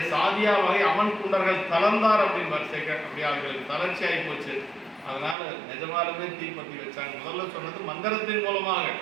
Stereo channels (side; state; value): left; drops out; at 5.4 s